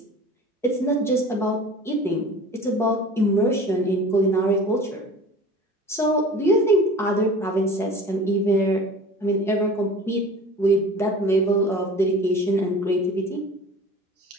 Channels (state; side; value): normal; both; correlation 0.41